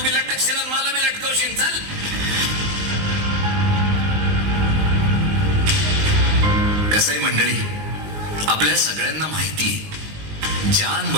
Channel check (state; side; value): late; left; 19 ms